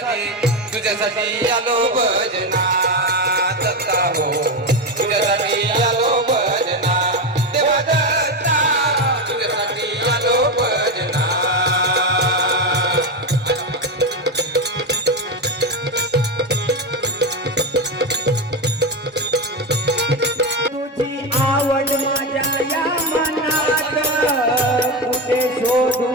आलो भजना दत्ता हो तुझ्यासाठी आलो भजना देवा दत्ता तुझ्यासाठी आलो भजना तुझी आवड माझ्या या मनात कुठे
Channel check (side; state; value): both; normal; correlation 0.13